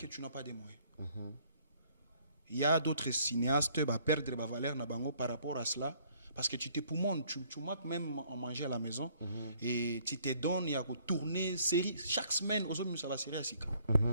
tu n'as pas de moyens. Il y a d'autres cinéastes qui vont perdre la valeur par rapport à cela. Parce que tu te poumonnes, tu manques même en manger à la maison. Et tu te donnes, il y a que tourner série. Chaque semaine, ça va série à Sika.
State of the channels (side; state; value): both; inverted; correlation -0.62